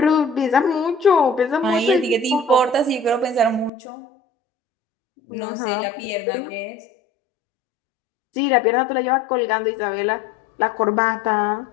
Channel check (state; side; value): drops out; right; at 3.7 s